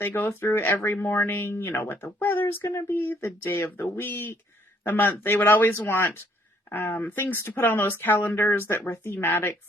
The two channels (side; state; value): both; normal; correlation 0.66